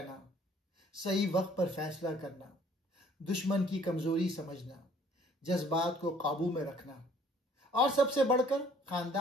सही वक्त पर फैसला करना, दुश्मन की कमजोरी समझना, जज्बात को काबू में रखना और सबसे बढ़कर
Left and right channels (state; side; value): normal; both; correlation 0.58